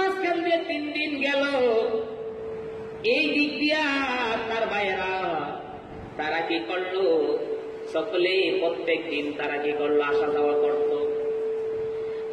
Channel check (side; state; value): both; identical; correlation 1.00